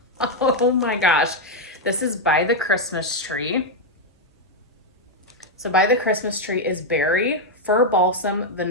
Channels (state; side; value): normal; both; correlation 0.01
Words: oh my gosh. This is By the Christmas Tree. So By the Christmas Tree is berry, fir balsam,